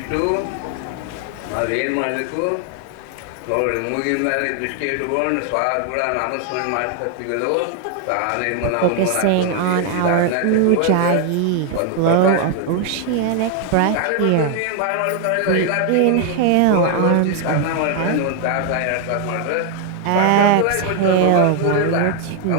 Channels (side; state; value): both; different; correlation 0.00